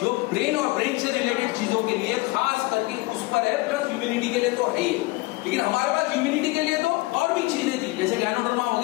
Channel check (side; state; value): right; quieter; 22.0 dB